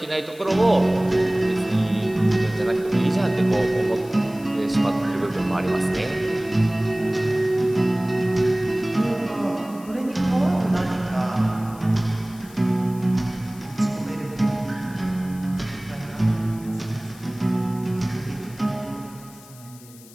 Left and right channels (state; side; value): noise; left; hiss, 22 dB below the sound